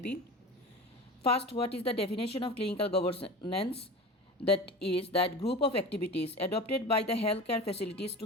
First, what is the definition of clinical governance? That is that group of activities adopted by the healthcare facilities to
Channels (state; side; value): normal; both; correlation 0.33